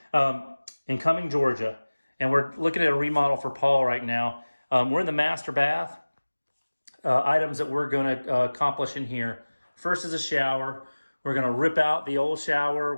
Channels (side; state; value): both; inverted; correlation -1.00